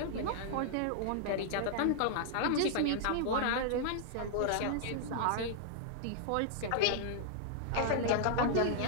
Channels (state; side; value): different; both; correlation -0.01